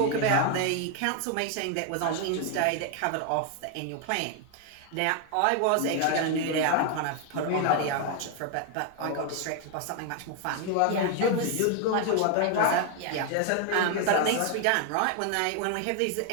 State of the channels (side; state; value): both; different; correlation 0.00